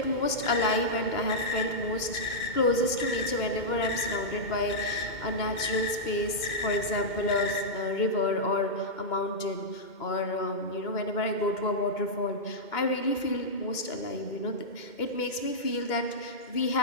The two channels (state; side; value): late; right; 2.2 ms